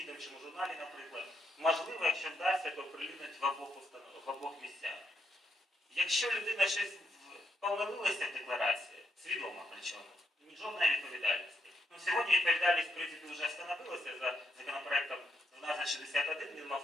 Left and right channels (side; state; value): both; normal; correlation 0.77